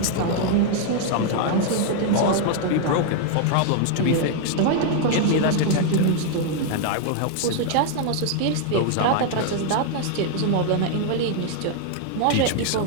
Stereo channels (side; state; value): both; different; correlation 0.00